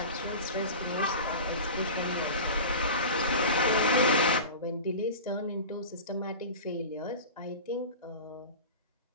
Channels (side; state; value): both; inverted; correlation -0.33